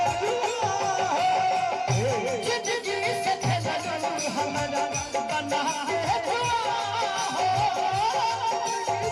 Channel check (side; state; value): both; identical; correlation 1.00